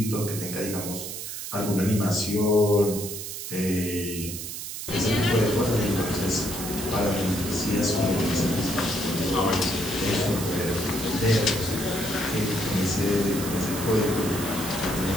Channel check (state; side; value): noise; right; hiss, 7 dB below the sound